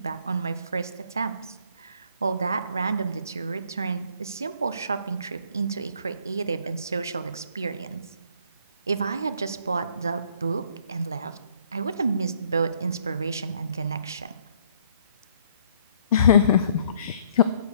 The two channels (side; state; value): both; inverted; correlation -0.62